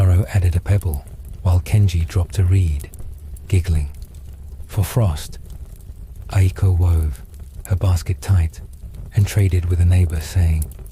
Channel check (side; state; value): both; identical; correlation 1.00